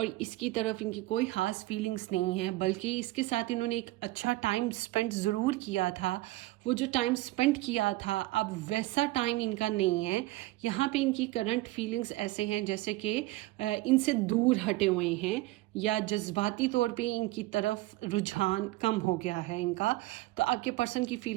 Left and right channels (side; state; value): left; quieter; 18.7 dB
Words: इसकी तरफ इनकी कोई खास फीलिंग्स नहीं है, बल्कि इसके साथ इन्होंने एक अच्छा टाइम स्पेंड ज़रूर किया था। वो जो टाइम स्पेंड किया था अब वैसा टाइम इनका नहीं है। यहाँ पे इनकी करंट फीलिंग्स ऐसे हैं जैसे कि इनसे दूर हटे हुए हैं या जज्बाती तौर पे इनकी तरफ रुझान कम हो गया है इनका। तो आपके पर्सन की